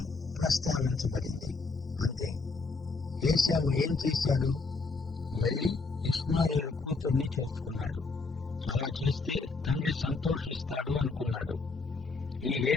ప్రస్తావించబడింది, అంతే. ఏశావు ఏం చేశాడు? వెళ్లి ఇష్మాయేలు కూతుర్ని చేసుకున్నాడు. అలా చేస్తే తండ్రి సంతోషిస్తాడు అనుకున్నాడు. ఈ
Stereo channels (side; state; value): right; quieter; 4.0 dB